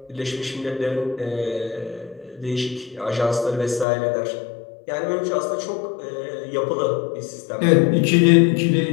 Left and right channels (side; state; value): right; drops out; at 3.9 s